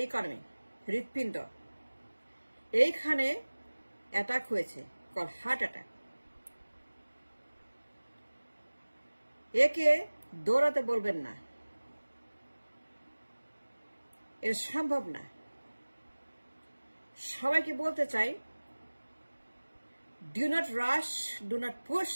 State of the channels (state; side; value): inverted; both; correlation -1.00